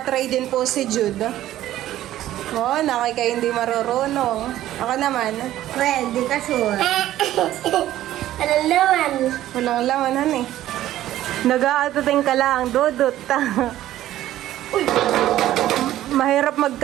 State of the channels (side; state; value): left; quieter; 13.6 dB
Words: din po si Jude. Oh, nakay kayo hindi marurunong. Ako naman. Pwede ka sure. Ano naman? Walang lamanan eh. Nag-aatating ka lang, Dudut. Mahirap